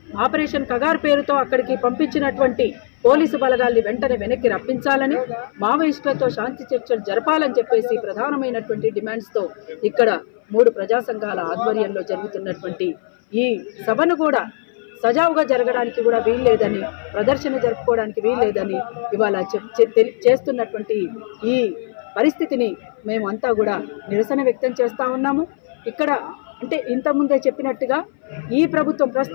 ఆపరేషన్ కగార్ పేరుతో అక్కడికి పంపించినటువంటి పోలీసు బలగాల్ని వెంటనే వెనక్కి రప్పించాలని, మావోయిస్టులతో శాంతి చర్చలు జరపాలని చెప్పేసి ప్రధానమైనటువంటి డిమాండ్స్తో ఇక్కడ 3 ప్రజా సంఘాల ఆధ్వర్యంలో జరుగుతున్నటువంటి ఈ సభను కూడా సజావుగా జరగడానికి కూడా వీల్లేదని, ప్రదర్శన జరుపుకోవడానికి వీల్లేదని ఇవాళ చేస్తున్నటువంటి ఈ పరిస్థితిని మేమంతా కూడా నిరసన వ్యక్తం చేస్తూ ఉన్నాము. ఇక్కడ అంటే ఇంతకుముందే చెప్పినట్టుగా ఈ ప్రభుత్వం,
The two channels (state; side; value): silent; right; 59 dB below the other